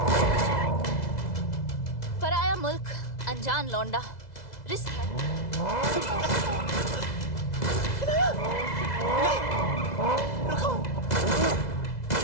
पराया मुल्क, अनजान लौंडा, रिस्क है। रुको।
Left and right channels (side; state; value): right; late; 2.0 ms